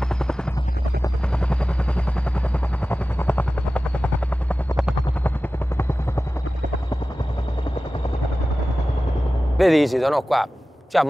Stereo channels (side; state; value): both; normal; correlation 0.95